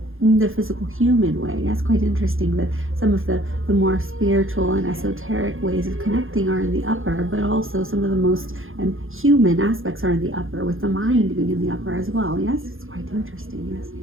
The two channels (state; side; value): late; left; 0.60 ms